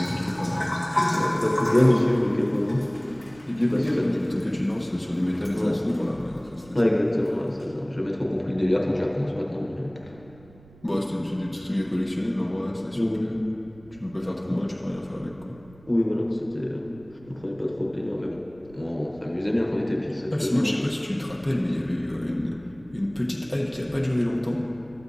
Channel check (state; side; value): noise; right; rumble, 24 dB below the sound